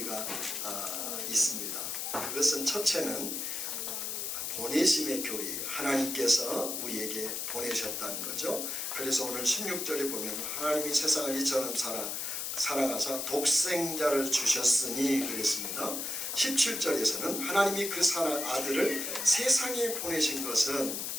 있습니다. 그것은 첫째는 보내심의 교리예요. 하나님께서 우리에게 보내셨다는 거죠. 그래서 오늘 16절에 보면 하나님이 세상을 이처럼 사랑하사 독생자를 주셨으니 그랬습니다. 17절에서는 하나님이 그 아들을 세상에 보내신 것은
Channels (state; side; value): noise; left; hiss, 3 dB below the sound